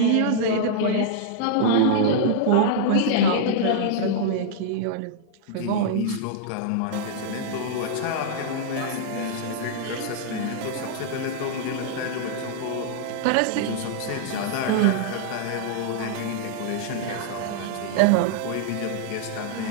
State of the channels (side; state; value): both; different; correlation -0.01